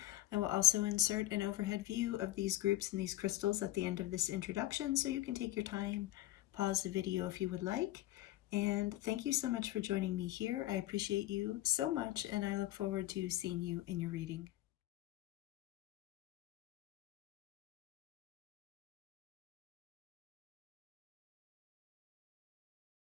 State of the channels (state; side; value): quieter; right; 15.7 dB